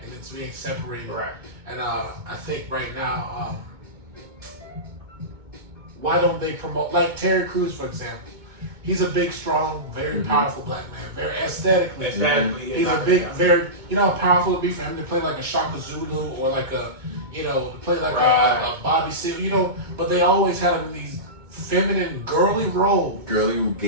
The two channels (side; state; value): left; late; 2.2 ms